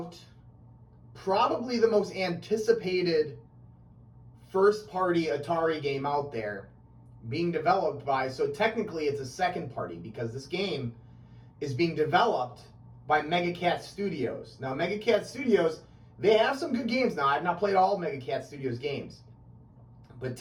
probably the most anticipated first-party Atari game out there being developed by, so technically it's a second party because this game is being developed by MegaCat Studios. Now, MegaCat Studios, they have some good games now. I've not played all MegaCat Studios games, but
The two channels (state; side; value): identical; both; correlation 1.00